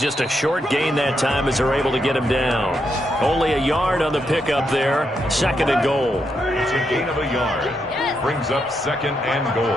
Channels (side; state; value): both; normal; correlation 0.81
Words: just a short gain that time as they're able to get him down. Only a yard on the pickup there. Second and goal. It's a gain of a yard. Brings up second and